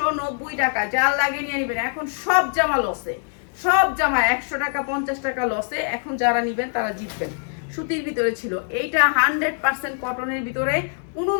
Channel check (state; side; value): silent; right; 58 dB below the other